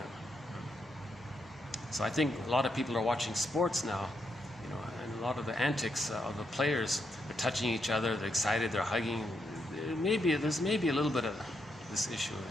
So I think a lot of people are watching sports now, and a lot of the antics of the players, they're touching each other, they're excited, they're hugging. There's maybe a little bit of this issue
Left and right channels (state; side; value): normal; both; correlation 0.80